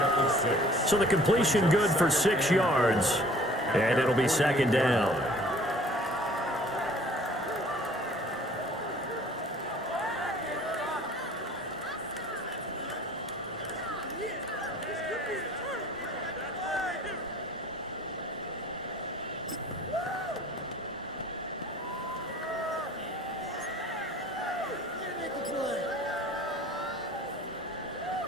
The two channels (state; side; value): normal; both; correlation 0.52